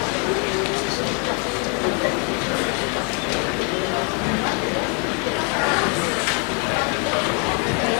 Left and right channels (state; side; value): quieter; right; 35.0 dB